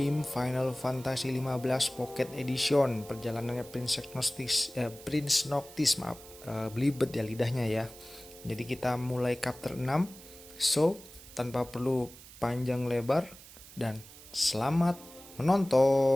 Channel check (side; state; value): right; noise; hiss, 19 dB below the sound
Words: Final Fantasy 15 Pocket Edition. Perjalanannya Prince Noctis, maaf, belibet ya lidahnya ya. Jadi kita mulai chapter 6. So, tanpa perlu panjang lebar dan selamat